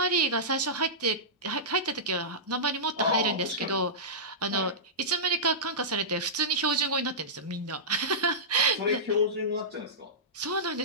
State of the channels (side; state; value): both; normal; correlation -0.16